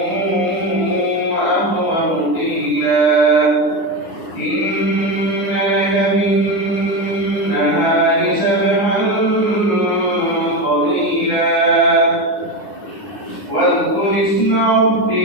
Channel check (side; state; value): right; late; 9.9 ms